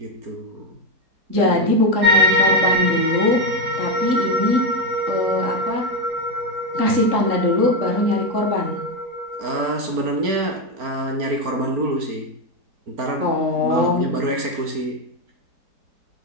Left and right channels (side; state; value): left; late; 4.4 ms